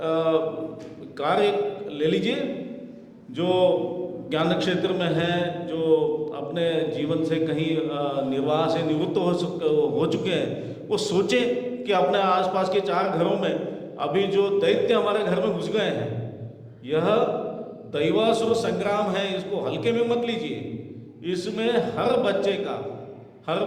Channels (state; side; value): identical; both; correlation 1.00